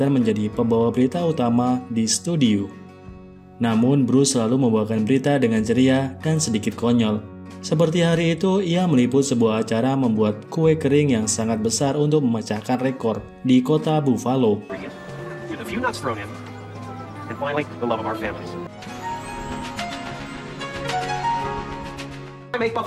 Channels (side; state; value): both; identical; correlation 1.00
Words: menjadi pembawa berita utama di studio. Namun Bruce selalu membawakan berita dengan ceria dan sedikit konyol. Seperti hari itu, ia meliput sebuah acara membuat kue kering yang sangat besar untuk memecahkan rekor di kota Buffalo. With a few nuts thrown in, and finally, the love of our families. I make